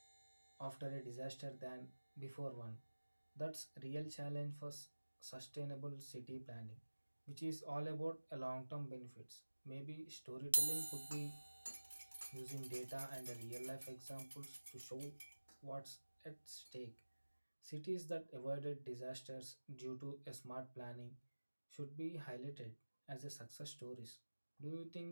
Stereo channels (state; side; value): inverted; both; correlation -1.00